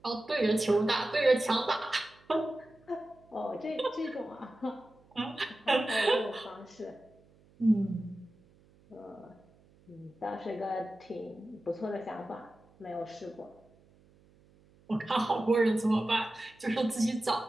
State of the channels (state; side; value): noise; right; hum, 29 dB below the sound